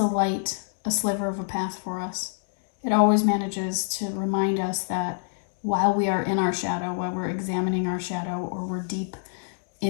light a sliver of a path for us. It always manages to remind us that while we are in our shadow, while we're examining our shadow, or we're deep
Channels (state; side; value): silent; right; digital silence